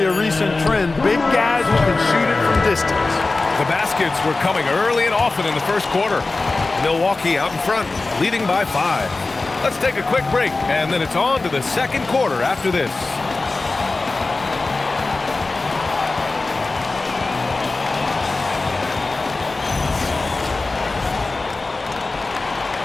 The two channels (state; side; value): quieter; right; 3.5 dB